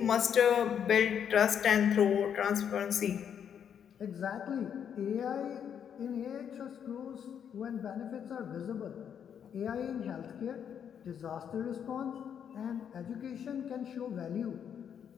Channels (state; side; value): quieter; right; 8.3 dB